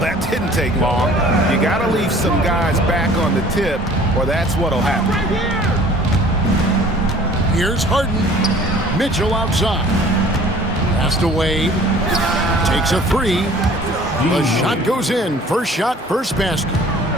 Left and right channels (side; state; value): both; normal; correlation 0.50